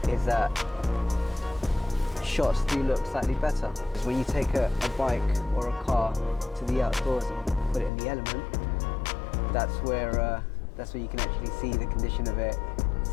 is that shots do look slightly better. When you take a bike or a car to the outdoors and put it in the element, that's where you can actually see the condition of it,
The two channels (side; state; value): right; drops out; at 7.9 s